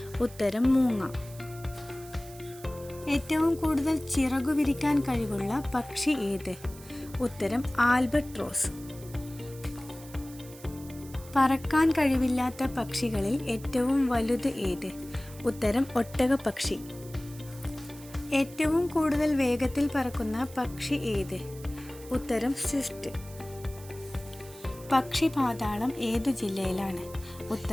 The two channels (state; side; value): noise; right; hiss, 19 dB below the sound